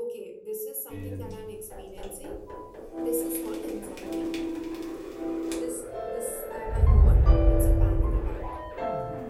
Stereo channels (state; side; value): identical; both; correlation 1.00